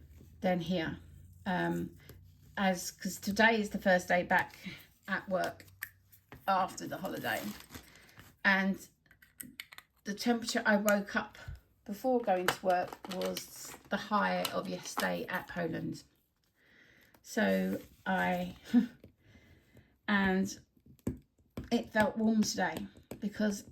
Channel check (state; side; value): identical; both; correlation 1.00